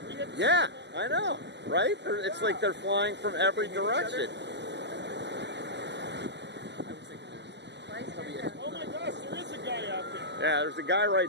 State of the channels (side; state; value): left; late; 0.50 ms